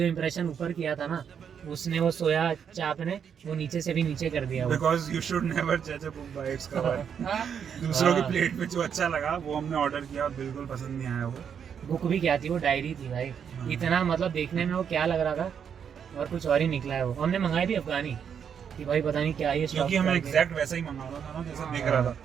इम्प्रेशन ऊपर किया था ना, उसने वो सोया चाप ने वो नीचे से भी नीचे कर दिया। Because you should never judge a book by its cover। दूसरों की प्लेट में जो अच्छा लगा वो हमने ऑर्डर किया और बिल्कुल पसंद नहीं आया वो। बुक भी क्या थी, वो डायरी थी भाई। इतना मतलब देखने में वो क्या लग रहा था, और कुछ और ही निकला है वो। हमने मंगाई भी अफगानी कि भाई पता नहीं क्या ये, क्योंकि हमें एग्जैक्ट वैसा ही मंगाना था ना जैसा दिख रहा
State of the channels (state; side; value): quieter; left; 7.6 dB